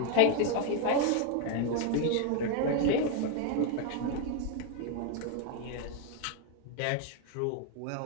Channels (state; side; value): different; both; correlation 0.01